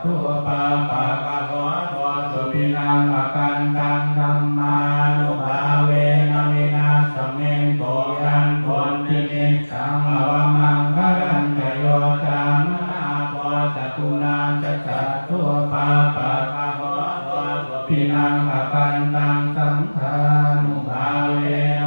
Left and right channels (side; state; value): both; inverted; correlation -1.00